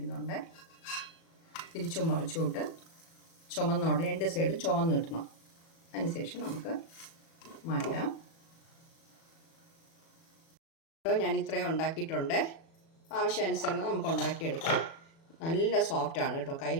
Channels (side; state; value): right; late; 36 ms